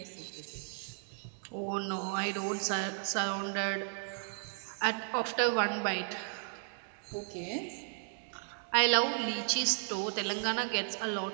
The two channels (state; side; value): silent; left; 55 dB below the other